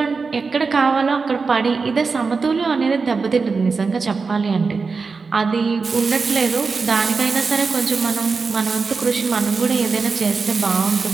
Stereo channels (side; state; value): left; quieter; 4.6 dB